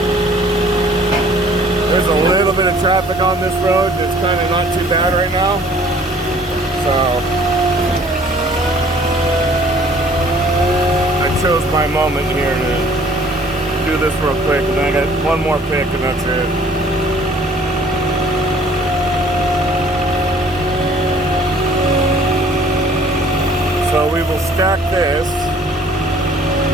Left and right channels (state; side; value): normal; both; correlation 0.55